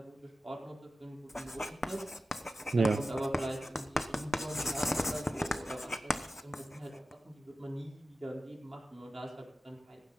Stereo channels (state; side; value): normal; both; correlation 0.94